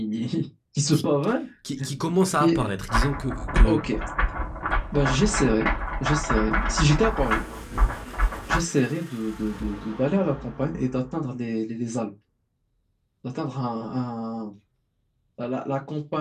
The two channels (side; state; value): both; identical; correlation 1.00